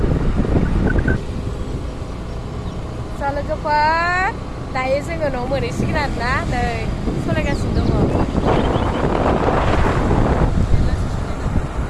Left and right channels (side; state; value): both; identical; correlation 1.00